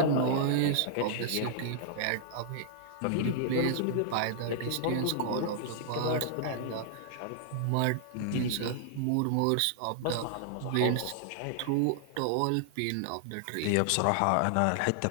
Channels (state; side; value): different; both; correlation -0.01